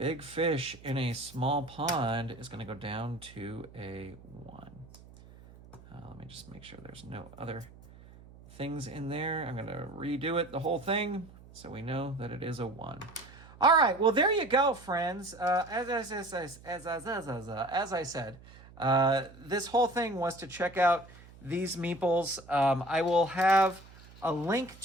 fish in a small pond is going to go down to a 1. Let me just make sure there's no other things in there. I'm going to redo it, the whole thing, so we know that it is a 1. All right, well, there you go, friends. As I said, this whole thing was to check out these meeples. I will have a link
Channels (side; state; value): right; noise; hum, 21 dB below the sound